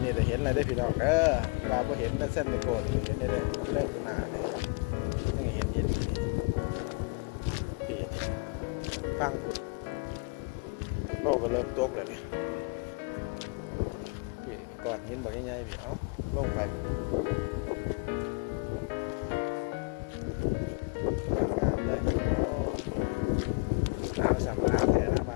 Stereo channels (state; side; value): quieter; right; 32.1 dB